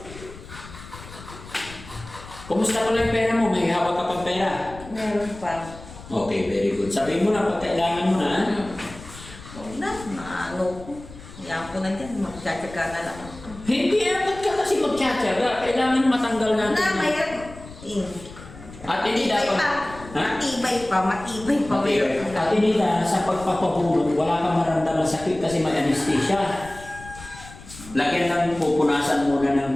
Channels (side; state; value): left; noise; rumble, 16 dB below the sound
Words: Kumusta pala yung pera mo? May hawak ka pang pera? Meron pa. Okay, very good. Sabihin mo na pag kailangan mo na. Ha? Wag na, maano ko. Yan ko na dyan, magtsatsaga na lang ako. Hindi, ba't ka kasi magtsatsaga? Kailangan matanggal natin. Na, mayroon. At hindi dapat. Ha? Matibay pa, matibay pa. Mayroon At hindi na sa pagpapahulog, wala kang maramdaman sakit kasi may anesthesia. Lagyan lang pupunasan muna